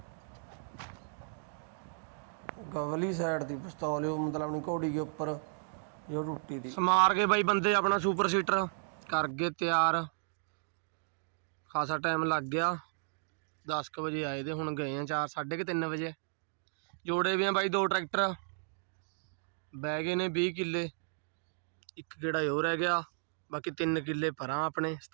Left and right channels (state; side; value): silent; left; digital silence